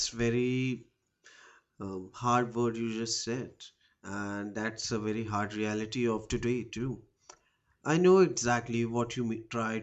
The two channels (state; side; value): identical; both; correlation 1.00